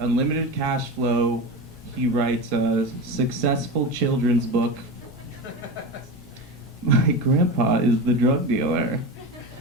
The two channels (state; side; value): normal; both; correlation 0.23